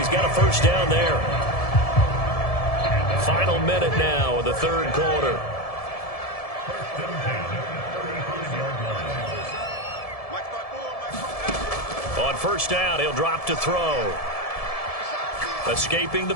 got a first down there. Final minute now of the 3rd quarter. On first down, he'll drop to throw. Escaping the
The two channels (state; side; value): late; right; 1.7 ms